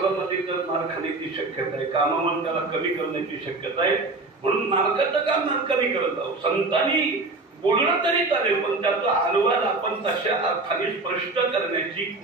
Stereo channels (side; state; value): left; quieter; 3.4 dB